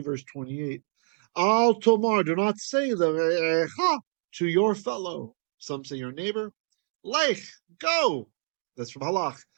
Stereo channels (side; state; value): left; silent; digital silence